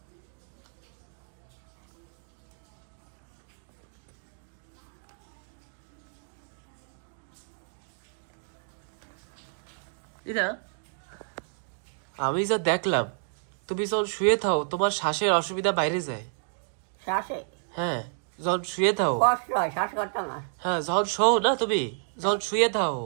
দিদা আমি যা দেখলাম, তুমি যখন শুয়ে থাও তোমার শ্বাসের অসুবিধা বাইরে যায়। শ্বাসে? হ্যাঁ যখন শুয়ে থাও। কষ্ট হয় শ্বাস করতে না? হ্যাঁ যখন শোও না তুমি, যখন শুয়ে থাও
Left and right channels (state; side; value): silent; left; digital silence